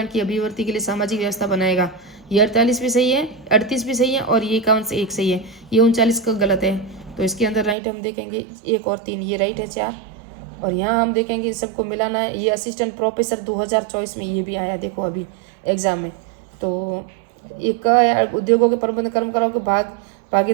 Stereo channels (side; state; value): left; drops out; at 7.8 s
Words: की अभिवृद्धि के लिए सामाजिक व्यवस्था बनाएगा, ये 48 भी सही है, 38 भी सही है, और ये 51 से 1 सही है। ये 39 का गलत है, तो इसके अंदर राइट हम देखेंगे 1 और 3, ये राइट है 4। और यहाँ हम देखेंगे सबको मिलाना है। ये असिस्टेंट प्रोफेसर 2024 में ये भी आया, देखो अभी एग्जाम में। तो एक उद्योगों के प्रबंध कर्मकारों के